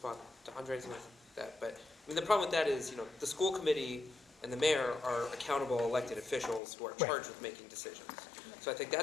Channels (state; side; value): drops out; right; at 6.6 s